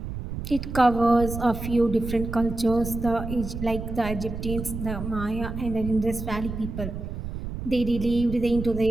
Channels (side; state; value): right; noise; rumble, 7 dB below the sound